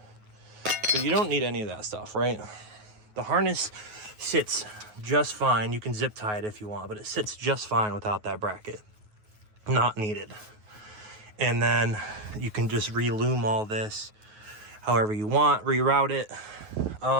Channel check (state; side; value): late; left; 9.4 ms